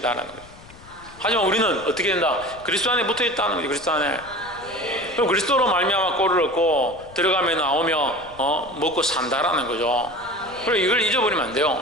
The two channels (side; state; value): left; noise; rumble, 22 dB below the sound